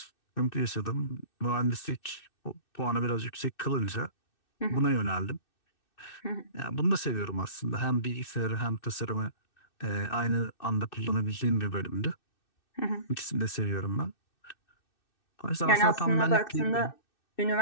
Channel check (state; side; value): late; right; 2.6 ms